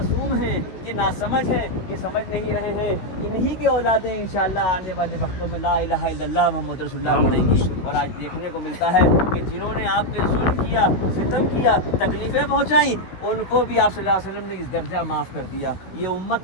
हैं, ये नासमझ हैं, ये समझ नहीं रहे हैं, इन्हीं की औलादें इंशाअल्लाह आने वाले वक्तों में ला इलाहा इल्लल्लाह मुहम्मद रसूलुल्लाह पढ़ेंगी। और आज देखने को मिलता है कि जिन्होंने आप पे जुल्म किया, सितम किया, तकलीफ़ें पहुँचाई, उनको भी आप सल्लल्लाहु अलैहि वसल्लम ने इस दर्जा माफ़ कर दिया। ये उम्मत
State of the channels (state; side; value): late; right; 16 ms